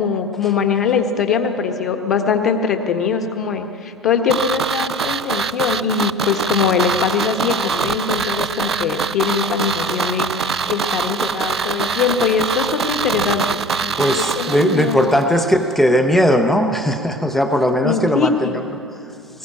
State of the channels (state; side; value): normal; both; correlation 0.44